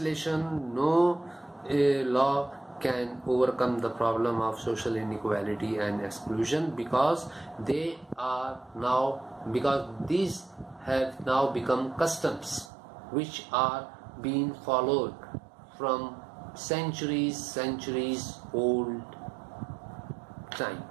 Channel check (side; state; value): left; drops out; at 12.7 s